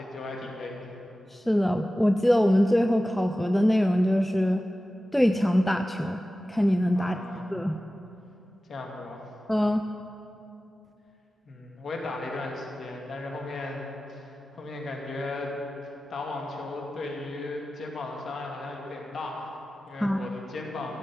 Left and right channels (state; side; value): normal; both; correlation 0.95